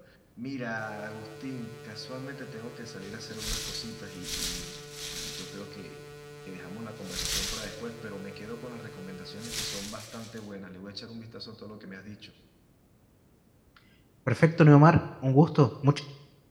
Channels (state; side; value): identical; both; correlation 1.00